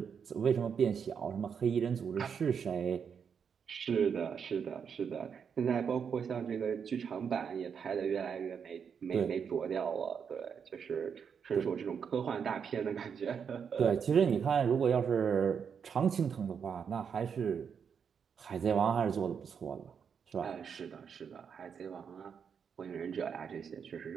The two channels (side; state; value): left; quieter; 6.9 dB